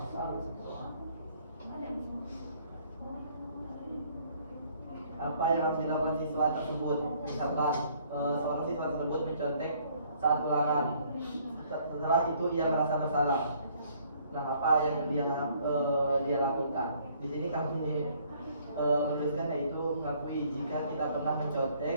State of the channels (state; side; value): inverted; both; correlation -0.62